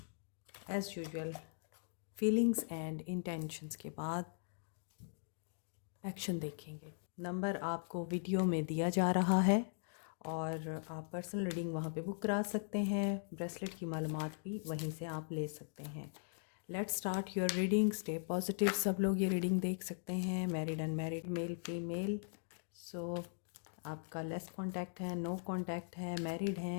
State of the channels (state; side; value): silent; right; digital silence